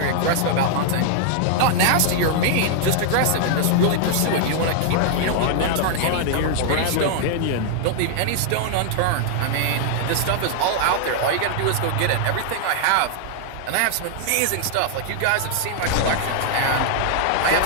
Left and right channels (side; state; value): both; different; correlation 0.00